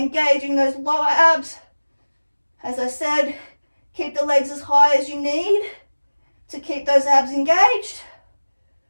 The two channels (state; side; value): inverted; both; correlation -1.00